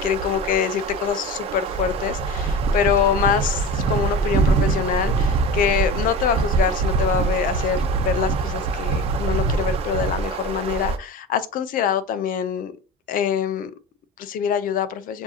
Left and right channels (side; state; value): both; normal; correlation 0.31